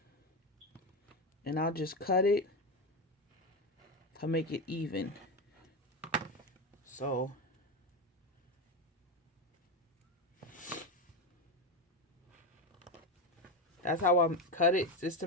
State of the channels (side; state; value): both; normal; correlation 0.15